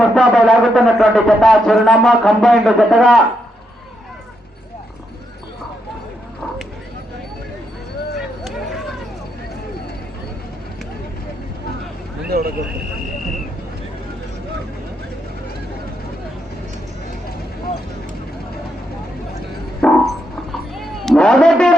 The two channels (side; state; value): both; normal; correlation 0.80